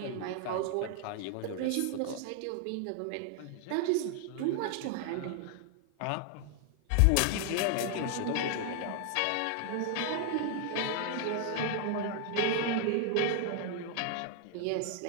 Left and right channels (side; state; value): both; different; correlation 0.00